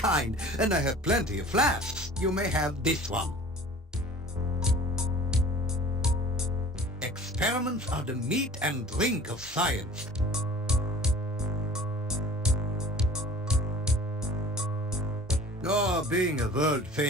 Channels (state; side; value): normal; both; correlation 0.44